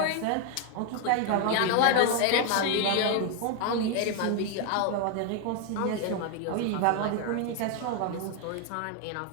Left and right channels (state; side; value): different; both; correlation 0.01